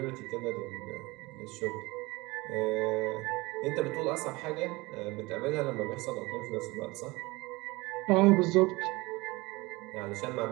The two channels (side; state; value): left; quieter; 22.7 dB